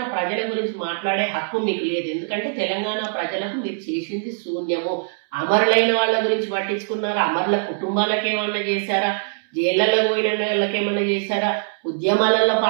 ప్రజల గురించి మాట్లాడే హక్కు మీకు లేదు. ఎందుకంటే తెలంగాణ ప్రజలకు మీరు చేసింది శూన్యము. అమరులైన వాళ్ళ గురించి పట్టించుకున్నారా? అమరుల కుటుంబాలకు ఏమన్నా చేశారా? జైళ్లలో పోయిన వాళ్ళకి ఏమన్నా చేశారా? ఉద్యమాలలో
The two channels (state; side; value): silent; left; 64 dB below the other